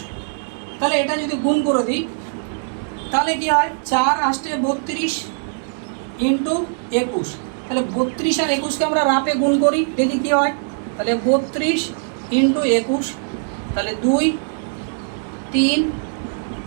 তাহলে এটা যদি গুণ করে দিই তাহলে কি হয়? 4 8 32 ইন্টু 21, তাহলে 32 আর 21-কে আমরা রাপে গুণ করি, দেখি কি হয়। তাহলে 32 ইন্টু 21, তাহলে 2 3,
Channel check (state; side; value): silent; left; 64 dB below the other